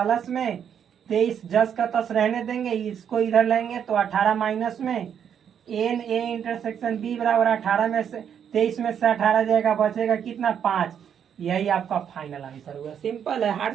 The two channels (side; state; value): left; quieter; 8.4 dB